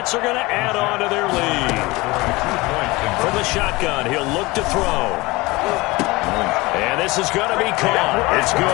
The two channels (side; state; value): right; quieter; 22.3 dB